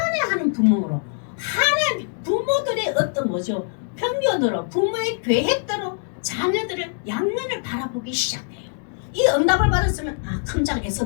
부모로 하나님 부모들의 어떤 뭐죠? 편견으로 부모의 계획대로 자녀들을 양면을 바라보기 시작해요. 이 응답을 받았으면 아 큰장 에서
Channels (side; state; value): right; silent; 56 dB below the other